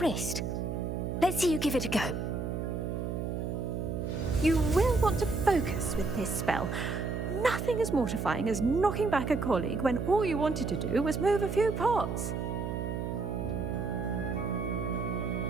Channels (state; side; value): noise; right; hum, 3 dB below the sound